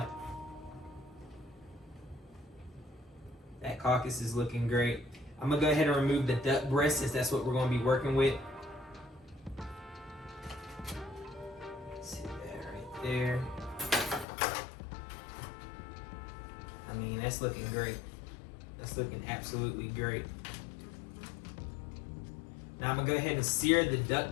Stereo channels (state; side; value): drops out; right; at 14.2 s